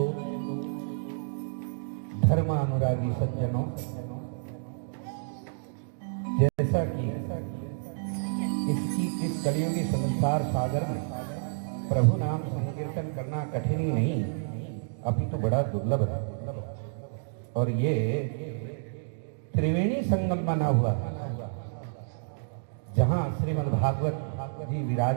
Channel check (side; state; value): left; silent; digital silence